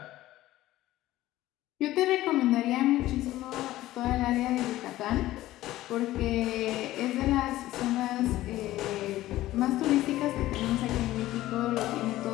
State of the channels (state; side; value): quieter; right; 15.6 dB